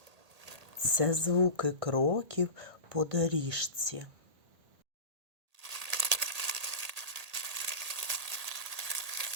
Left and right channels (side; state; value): left; late; 1.8 ms